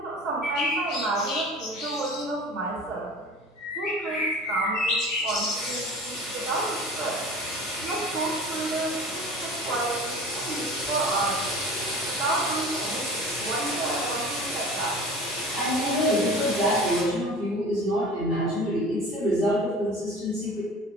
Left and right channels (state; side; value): normal; both; correlation 0.39